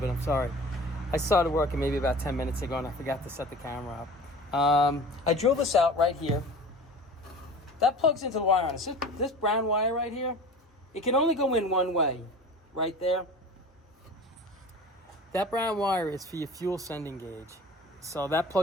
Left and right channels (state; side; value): normal; both; correlation 0.39